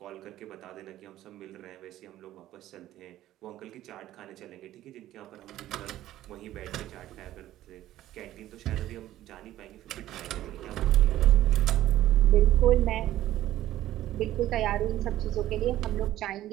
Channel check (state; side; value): quieter; left; 13.9 dB